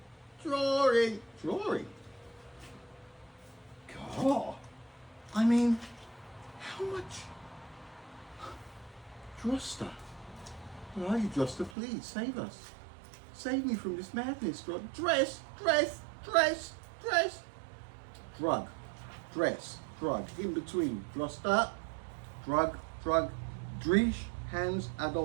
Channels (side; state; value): left; drops out; at 11.8 s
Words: God, I mean, how much? Drosta, where are you, Drosta? Please save us. Save me from this madness. Dress. Drug, dress, drug. In between. Drosta, drug. Drish, Hans